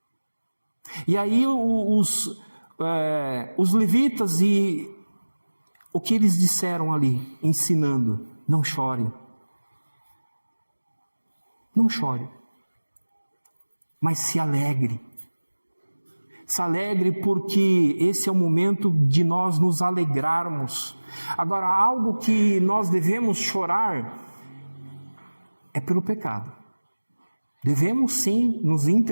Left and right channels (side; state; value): both; inverted; correlation -1.00